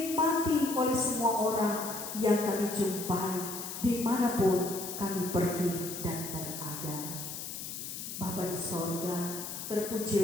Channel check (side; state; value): left; noise; hiss, 7 dB below the sound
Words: oleh semua orang yang kami jumpai dimanapun kami pergi dan berada. Bapa di sorga,